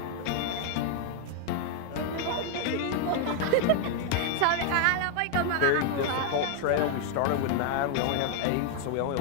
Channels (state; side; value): different; both; correlation 0.00